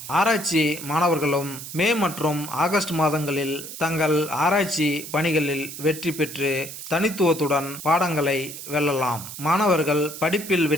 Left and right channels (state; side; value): noise; right; hiss, 11 dB below the sound